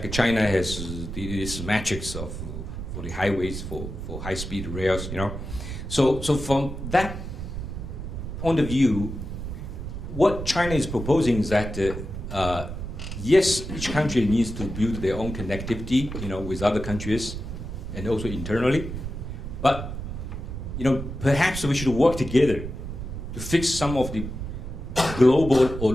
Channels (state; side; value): noise; right; rumble, 7 dB below the sound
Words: China has this matrix for the highways, for high-speed rails, So from that point of view, what China is proposing is that, yes, each country needs to build their own connectivity, with other countries, and also internally. But, perhaps we should work together to fix some of the global or